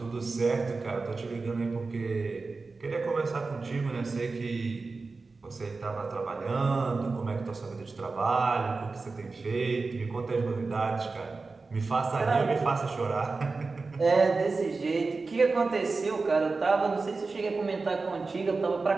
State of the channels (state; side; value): quieter; left; 4.0 dB